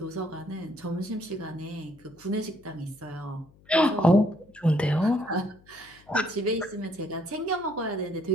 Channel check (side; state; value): left; noise; hum, 27 dB below the sound